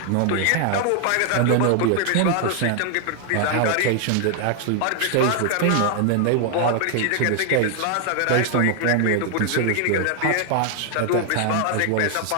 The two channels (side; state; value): both; different; correlation 0.00